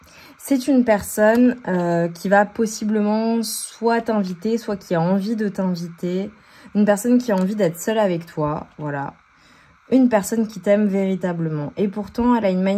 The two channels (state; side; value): identical; both; correlation 1.00